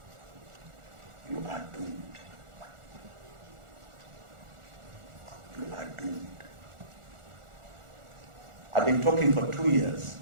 you are doomed. You are doomed. I've been talking for 2 years.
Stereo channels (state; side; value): late; left; 1.4 ms